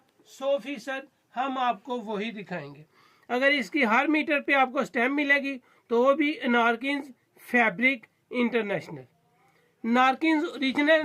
100% हम आपको वही दिखाएंगे। अगर इसकी हर मीटर पे आपको स्टैम्प मिलेगी तो वो भी नारकेन्स फैब्रिक इंटरनेशनल। नारकेन्स ओरिजिनल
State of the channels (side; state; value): both; identical; correlation 1.00